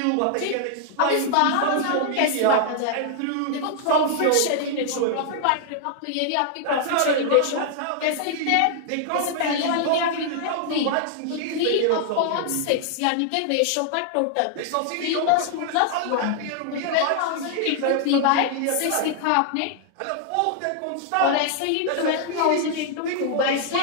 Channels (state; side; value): different; both; correlation 0.00